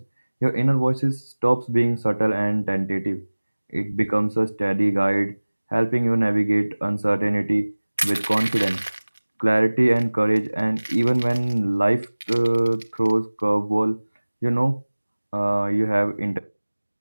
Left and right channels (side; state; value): both; inverted; correlation -1.00